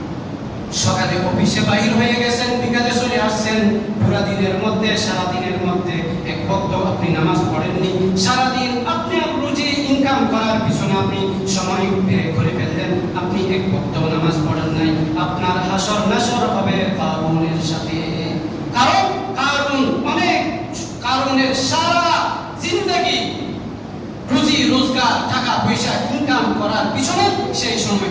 সকালে অফিসে বাহির হয়ে গেছেন, বিকালে চলে আসছেন, পুরা দিনের মধ্যে সারা দিনের মধ্যে এক ওয়াক্ত আপনি নামাজ পড়েননি, সারা দিন আপনি রুজি ইনকাম করার পিছনে আপনি সময় ব্যয় করে ফেললেন, আপনি এক ওয়াক্ত নামাজ পড়েন নাই, আপনার হাসর নাসর হবে কারুনের সাথে। কারণ কারুন অনেক কারুনের সারা জিন্দেগি রুজি রোজগার টাকা পয়সা ইনকাম করার পিছনে সেই সময়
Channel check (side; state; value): both; identical; correlation 1.00